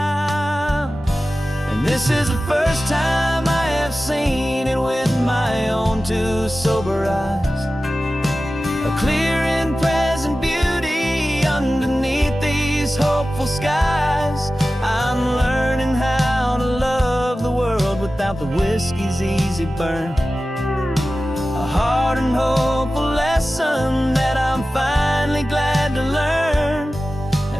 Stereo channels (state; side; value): normal; both; correlation 0.95